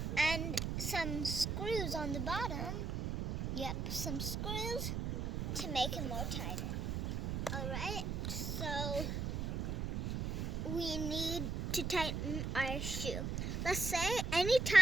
And some screws on the bottom. Yep, some screws to make it more tighter. Alright, so we need to tighten our shoe. Let's say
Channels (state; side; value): noise; right; rumble, 1 dB below the sound